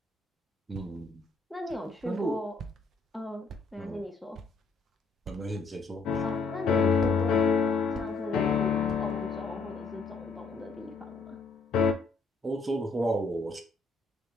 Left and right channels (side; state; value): right; quieter; 3.9 dB